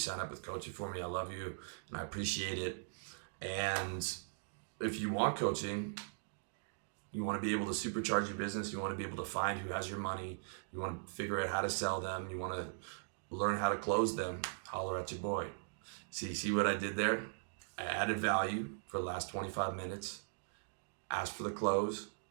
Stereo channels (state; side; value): silent; left; digital silence